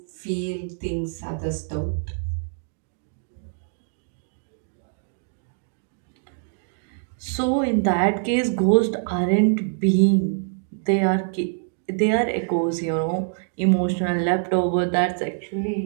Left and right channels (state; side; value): silent; left; digital silence